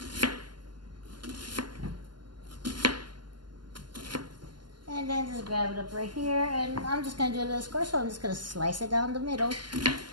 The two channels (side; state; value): left; late; 0.71 ms